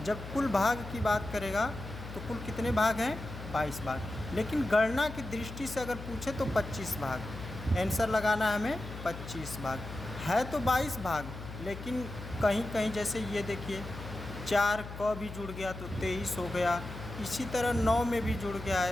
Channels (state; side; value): noise; left; hum, 11 dB below the sound